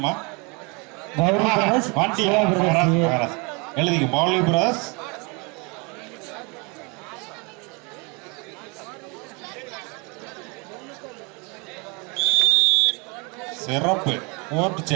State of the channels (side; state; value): left; quieter; 30.5 dB